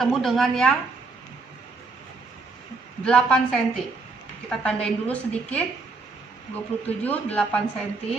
dengan yang 8 cm. Kita tandain dulu sedikit. 27, 8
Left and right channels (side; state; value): left; quieter; 3.9 dB